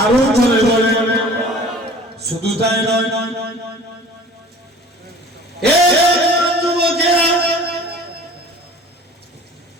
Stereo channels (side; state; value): both; normal; correlation 0.45